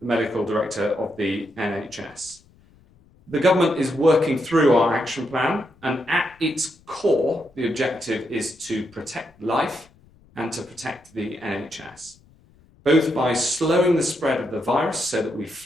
the Medical Director of the NHS. The government is working through our action plan, and at its core, the objective is to protect life and to protect the NHS, both by slowing the spread of the virus so that we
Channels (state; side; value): noise; left; rumble, 29 dB below the sound